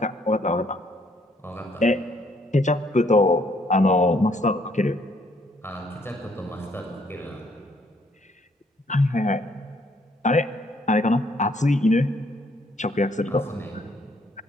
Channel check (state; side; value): normal; both; correlation 0.68